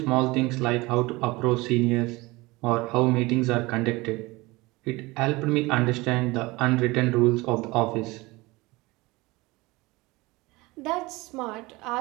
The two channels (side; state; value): left; quieter; 22.3 dB